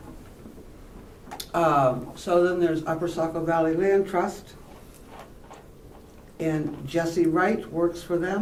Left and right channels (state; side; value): identical; both; correlation 1.00